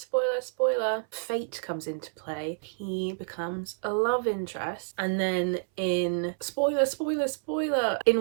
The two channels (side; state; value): left; silent; 59 dB below the other